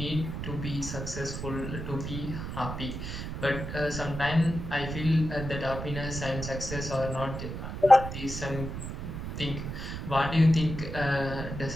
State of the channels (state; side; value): noise; right; rumble, 6 dB below the sound